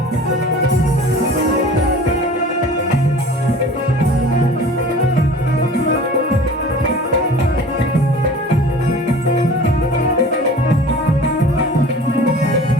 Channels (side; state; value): both; normal; correlation 0.42